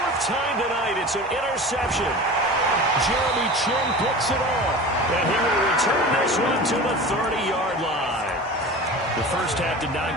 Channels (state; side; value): normal; both; correlation 0.34